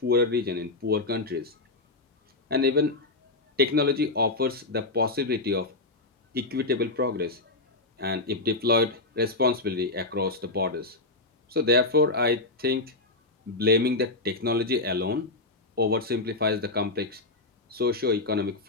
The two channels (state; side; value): quieter; right; 3.1 dB